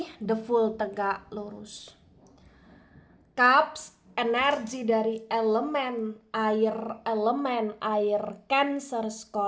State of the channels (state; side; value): identical; both; correlation 1.00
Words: the full tegak lurus. Cups, energi dari elemen air Cancer,